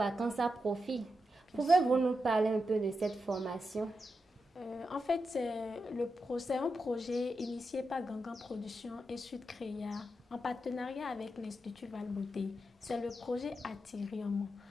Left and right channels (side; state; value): both; normal; correlation 0.87